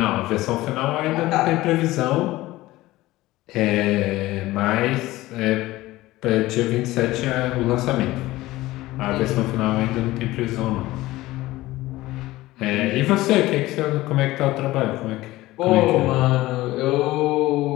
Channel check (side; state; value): right; quieter; 17.8 dB